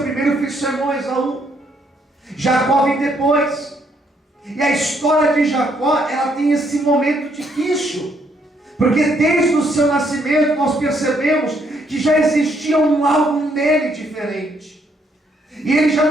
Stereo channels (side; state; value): both; normal; correlation 0.71